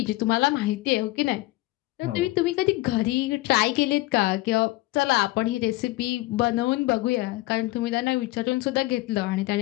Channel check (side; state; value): right; quieter; 19.2 dB